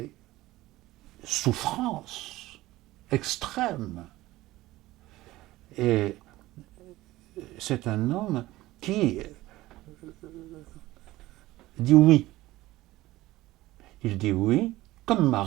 souffrance extrême. Et c'est un homme qui dit oui. Il dit oui comme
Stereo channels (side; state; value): left; quieter; 17.4 dB